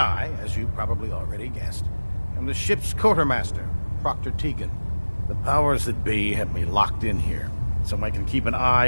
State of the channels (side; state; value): both; inverted; correlation -1.00